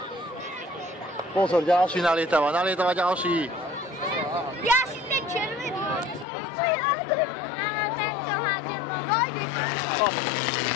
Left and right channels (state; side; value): drops out; right; at 6.2 s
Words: Pozor, ďalší nalietava ďalší. Ja si ten červený. Áno, tento hádem. Vojdeš.